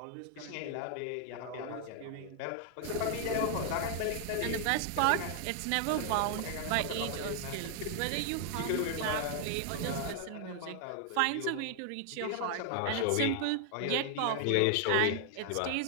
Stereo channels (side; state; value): both; different; correlation 0.00